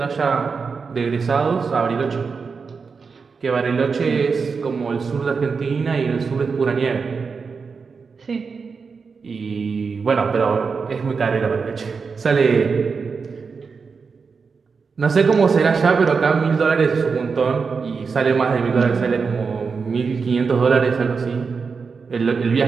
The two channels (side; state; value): left; quieter; 5.2 dB